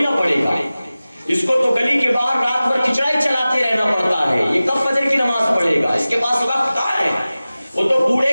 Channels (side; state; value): both; inverted; correlation -0.97